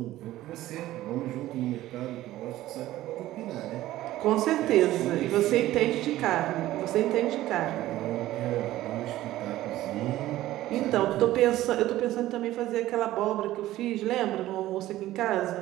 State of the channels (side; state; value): left; quieter; 15.2 dB